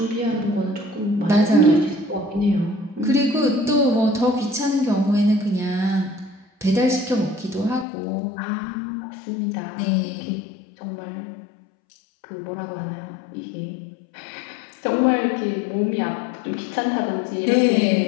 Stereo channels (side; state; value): right; drops out; at 7.9 s